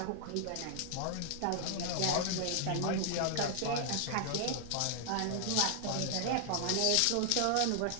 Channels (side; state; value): both; different; correlation 0.00